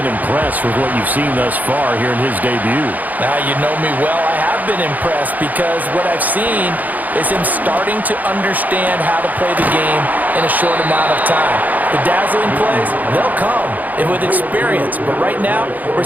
impressed with what you've seen thus far here in his debut. Now, you know me well. I have been impressed because what I've seen is him starting to understand how to play the game in a short amount of time. The dazzling plays, they'll come and with experience. But right now, we're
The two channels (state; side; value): late; left; 0.080 ms